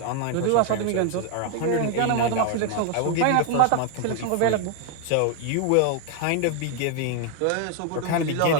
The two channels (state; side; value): different; both; correlation 0.01